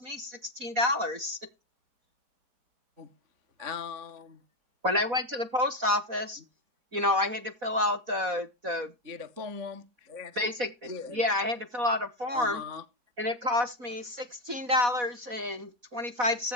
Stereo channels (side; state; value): left; late; 4.1 ms